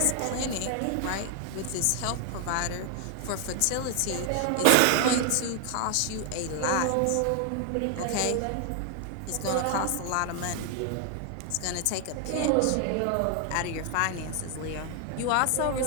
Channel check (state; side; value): different; both; correlation 0.00